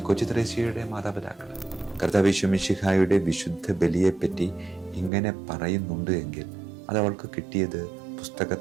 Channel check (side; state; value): left; drops out; at 5.1 s